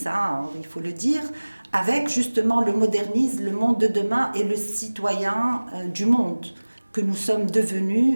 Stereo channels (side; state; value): both; inverted; correlation -1.00